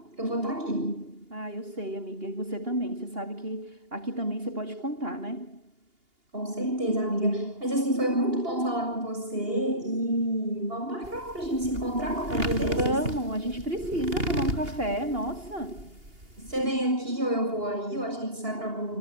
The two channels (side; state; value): left; late; 2.8 ms